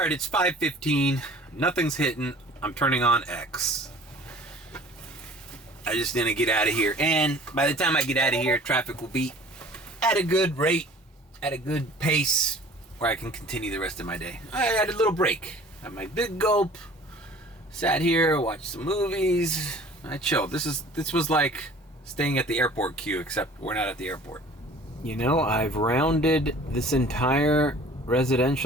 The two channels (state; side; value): normal; both; correlation 0.48